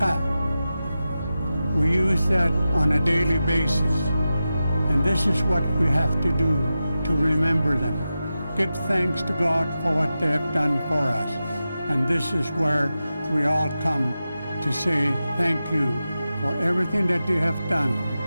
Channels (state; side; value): inverted; both; correlation -0.92